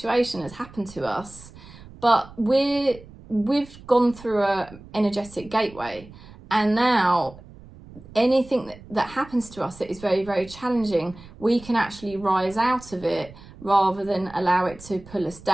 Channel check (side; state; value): right; noise; rumble, 20 dB below the sound